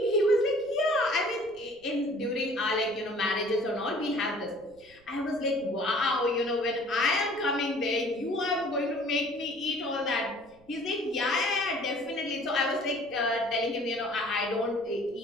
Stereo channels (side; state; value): right; noise; rumble, 28 dB below the sound